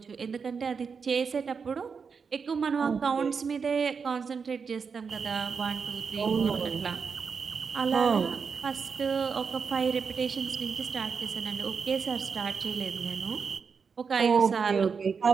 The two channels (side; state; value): left; quieter; 5.7 dB